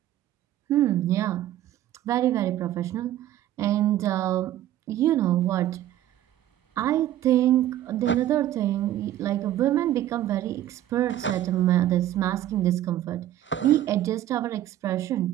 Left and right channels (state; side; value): quieter; left; 12.8 dB